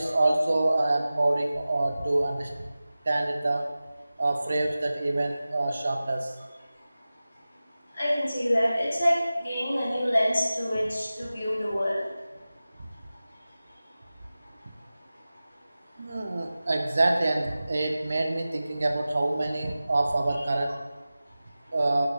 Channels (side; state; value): both; inverted; correlation -0.96